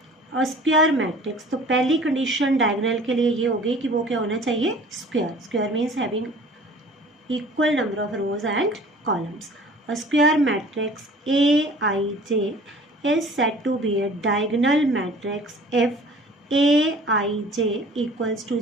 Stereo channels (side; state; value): both; normal; correlation 0.47